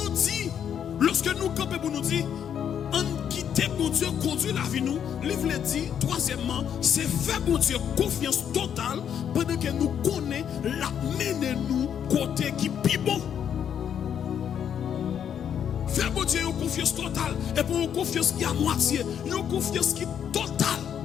nous campons pour nous dire, en quitter bon Dieu, conduire la vie nous, livre le dit, troisièmement, c'est faire bon Dieu confiance totale pendant que nous connaissons la mener nous côté qui est bon. Faire bon Dieu une confiance totale et pour une confiance qui est à moitié, une confiance qui est totale.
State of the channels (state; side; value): quieter; right; 8.7 dB